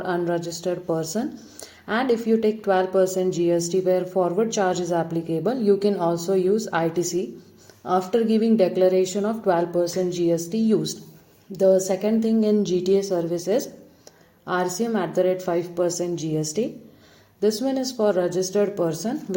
unregistered person. And if you take 12% GST where forward charge is applicable, you can also use ITC after giving declaration of 12% GST used. The second thing in GTA service is RCM at the rate 5% GST. This one is for registered person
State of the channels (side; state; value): both; identical; correlation 1.00